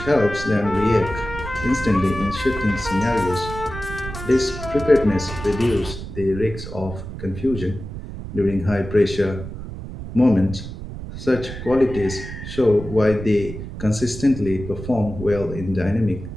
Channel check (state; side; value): noise; right; rumble, 10 dB below the sound